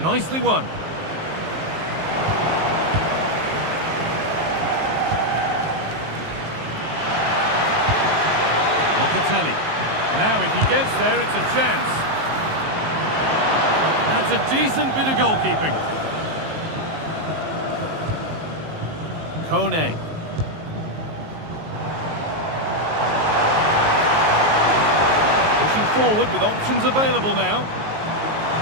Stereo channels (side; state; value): left; late; 19 ms